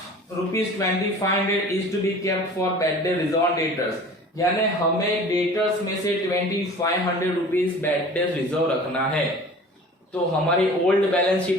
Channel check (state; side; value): normal; both; correlation 0.43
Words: ₹2500 is to be kept for bad debt reserve debtors. यानी हमें डेटर्स में से ₹2500 बैड डेट रिजर्व रखना है. तो हमारी ओल्ड बैलेंस